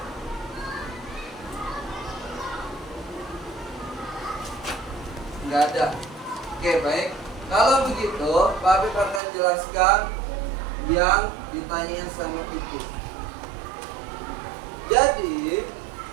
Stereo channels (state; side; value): drops out; left; at 9.2 s